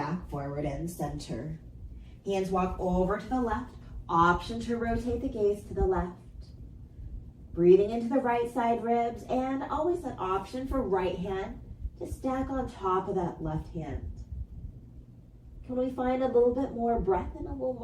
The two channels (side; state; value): both; identical; correlation 1.00